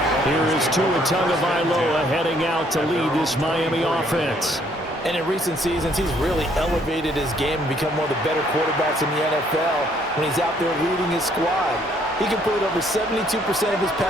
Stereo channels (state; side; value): normal; both; correlation 0.65